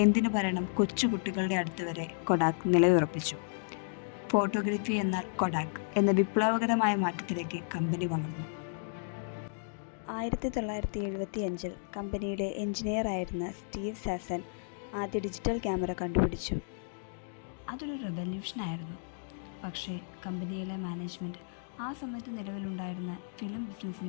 എന്തിനു പറയണം കൊച്ചുകുട്ടികളുടെ അടുത്ത് വരെ കൊഡാക്ക് നിലയുറപ്പിച്ചു. ഫോട്ടോഗ്രഫി എന്നാൽ കൊഡാക്ക് എന്ന വിപ്ലവകരമായ മാറ്റത്തിലേക്ക് കമ്പനി വളർന്നു. 1975 കമ്പനിയുടെ എഞ്ചിനീയറായിരുന്ന സ്റ്റീവ് സാസൻ ആദ്യ ഡിജിറ്റൽ ക്യാമറ കണ്ടുപിടിച്ചു. അതൊരു റെവല്യൂഷനായിരുന്നു. പക്ഷേ കമ്പനിയിലെ മാനേജ്മെൻറ്റ് ആ സമയത്ത് നിലവിലുണ്ടായിരുന്ന ഫിലിം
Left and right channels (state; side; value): silent; right; digital silence